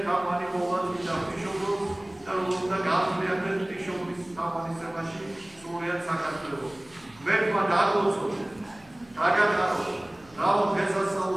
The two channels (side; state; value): right; noise; hum, 27 dB below the sound